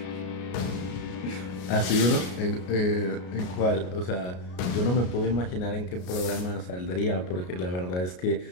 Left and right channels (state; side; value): late; right; 33 ms